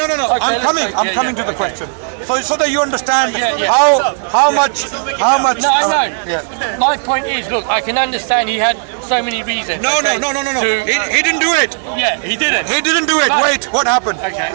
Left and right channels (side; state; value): left; silent; 66 dB below the other